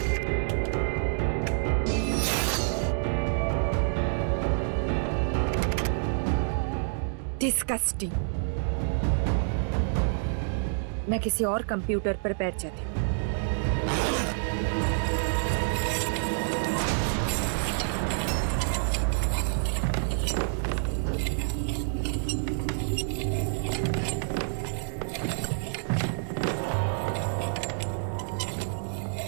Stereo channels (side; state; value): left; silent; digital silence